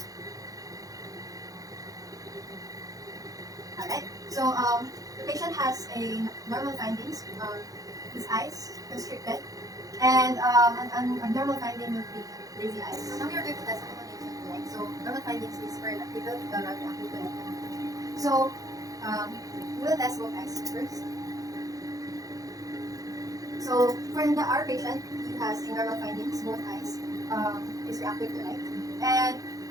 Alright. So the patient has a normal findings. His eyes constricted, and an abnormal finding would be lazy eyes. So now we are going to test accommodation, right? So normal findings is for electrical, electrical. So we will test both eyes first. So for our patient, he has a normal findings, both eyes is reactive to light. And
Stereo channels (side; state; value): left; late; 0.17 ms